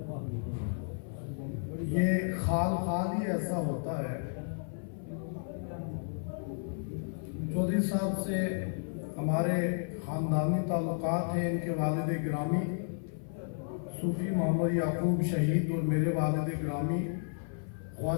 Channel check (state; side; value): silent; right; 56 dB below the other